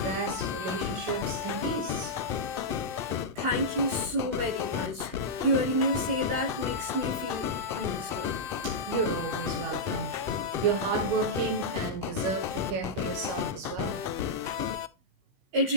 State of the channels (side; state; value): left; late; 16 ms